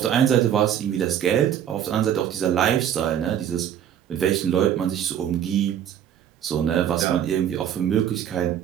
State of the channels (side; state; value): left; quieter; 9.8 dB